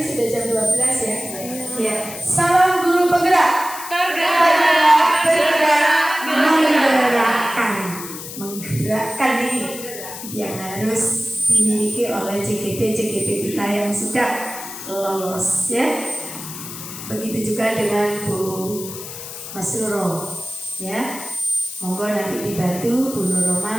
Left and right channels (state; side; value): noise; left; hiss, 10 dB below the sound